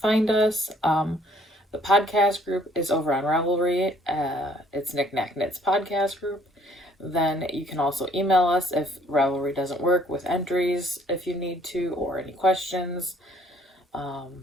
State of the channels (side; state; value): both; normal; correlation 0.60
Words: us, the podcast group is over on Ravelry. It's Knick-Knack Knits podcast group. Then you can also email us if Ravelry doesn't work with entries if you need to, or any questions,